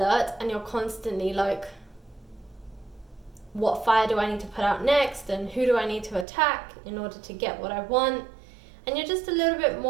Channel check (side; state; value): left; drops out; at 6.2 s